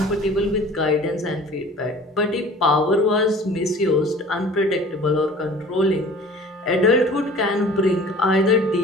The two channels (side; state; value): both; normal; correlation 0.46